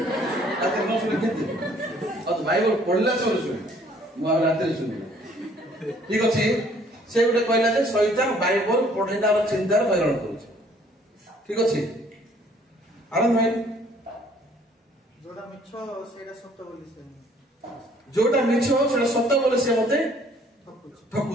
ରାତିରେ ନ ଶୁଣି କେମିତି? ବାଇବଲ ପଢିଲା ସମୟରେ ଶୁଣେ, ମୁଁ ଆଉ ରାତିରେ ଶୁଣିବି। ଠିକ ଅଛି, ସେ ଗୋଟେ କହିଲା ଯେ ଶୈତାନ ବାଇବଲ ପଢିଲାର ଚିନ୍ତାରେ ହଇରାଣ କରୁଛି। ଠିକ ଅଛି, ଆନନ୍ଦ ଭାଇ? ଯୋଉଟା ମିଛ ସେଇଟା ସତ ବୋଲି ସେ ମତେ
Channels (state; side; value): normal; both; correlation 0.59